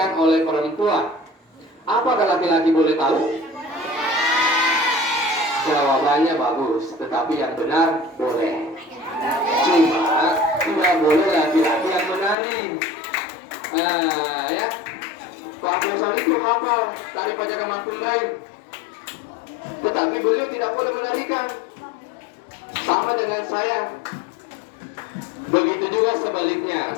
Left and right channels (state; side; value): drops out; right; at 12.4 s